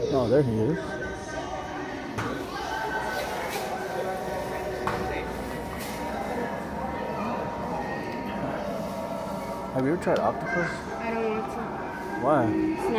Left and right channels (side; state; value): both; identical; correlation 1.00